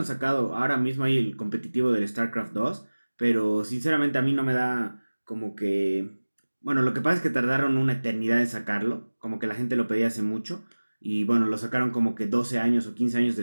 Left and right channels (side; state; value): both; inverted; correlation -1.00